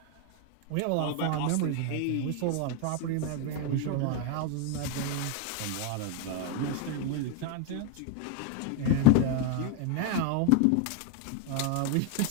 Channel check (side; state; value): both; different; correlation 0.01